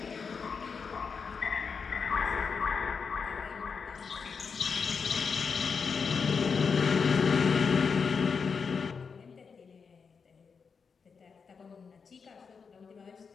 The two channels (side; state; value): right; quieter; 5.6 dB